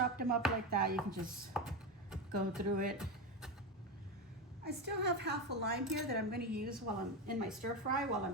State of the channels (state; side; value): normal; both; correlation 0.15